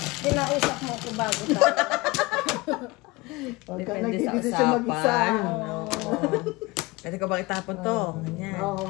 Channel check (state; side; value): quieter; right; 22.9 dB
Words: kinausap mo ako bago tayo. Huwag ka Depende sa nagdidesisyon mag-isa. usapan. Oo. Pwede ko bang itapon to? Ganyan.